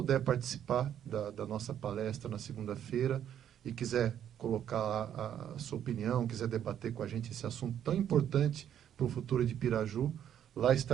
participar da nossa palestra na segunda-feira e quiser colocar a sua opinião, quiser debater com a gente esse assunto tão importante para o futuro de Piraju, lá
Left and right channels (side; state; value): left; quieter; 9.9 dB